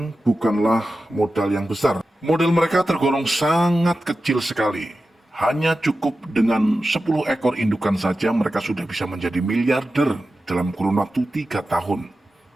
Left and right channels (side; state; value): both; normal; correlation 0.93